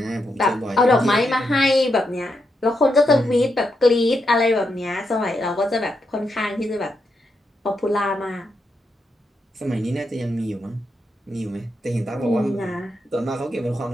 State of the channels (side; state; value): both; normal; correlation 0.83